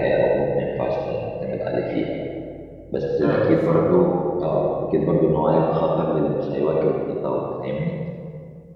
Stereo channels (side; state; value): both; identical; correlation 1.00